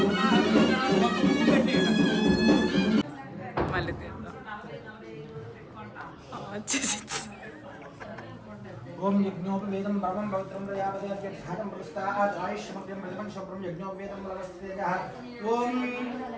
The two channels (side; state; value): both; identical; correlation 1.00